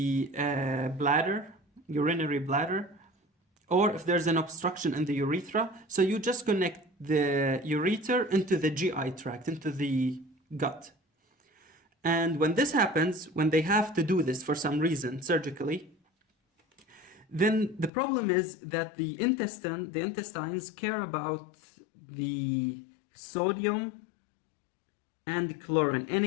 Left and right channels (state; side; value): drops out; right; at 17.9 s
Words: bladder, urinary bladder, or if there's an obstruction in the urethra, so you just connect the ureter into the GI tract, into the gut. And when this happens, when they have to do this for some reason, surgically, then the problem is that the intestines care about the sodium and chlorine,